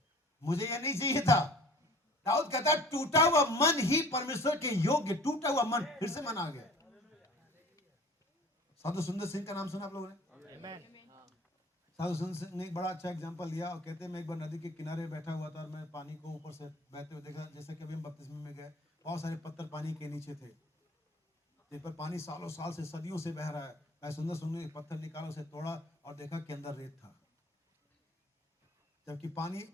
मुझे ये नहीं चाहिए था। दाऊद कहता है टूटा हुआ मन ही परमेश्वर के योग्य, टूटा हुआ मन, फिर से मन आ गया। साधु सुंदर सिंह का नाम सुना आप लोगों ने? साधु सुंदर सिंह ने एक बड़ा अच्छा एग्जांपल दिया और कहते हैं मैं एक बार नदी के किनारे बैठा हुआ था और मैं पानी को ऊपर से बहते हुए देखा, जैसे कि अभी हम बपतिस्मे में गए, बहुत सारे पत्थर पानी के नीचे थे, जिन पर पानी सालों साल से, सदियों से बह रहा है। मैं सुंदर सुंदर एक पत्थर निकाला, उसे तोड़ा और देखा कि अंदर रेत था, जबकि पानी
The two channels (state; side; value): normal; both; correlation 0.47